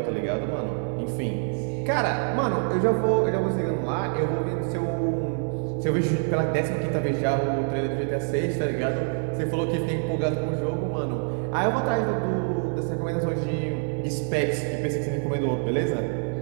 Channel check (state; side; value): silent; left; 56 dB below the other